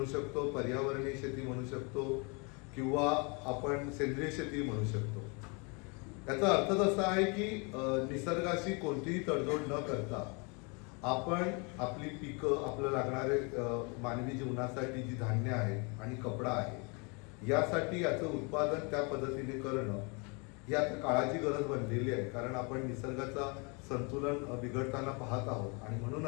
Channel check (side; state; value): right; quieter; 32.2 dB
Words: शकतो, पर्यावरणीय शेती म्हणू शकतो किंवा आपण सेंद्रिय शेती म्हणू शकतो। याचा अर्थ असा आहे की निसर्गाशी कोणतीही तडजोड न करता आपण आपली पिकं, आपल्याला लागणारे मानवी जीवनासाठी जी धान्य आहेत आणि कपडा आहे यासाठी याचं उत्पादन त्या पद्धतीने करणं ही आता काळाची गरज बनलेली आहे। कारण आपण निसर्गाचा संतुलन बिघडताना पाहत आहोत आणि